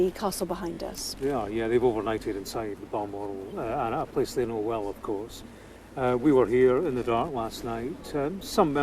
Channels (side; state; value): both; identical; correlation 1.00